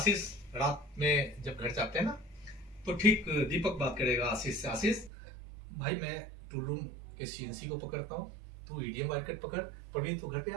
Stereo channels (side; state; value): left; drops out; at 5.1 s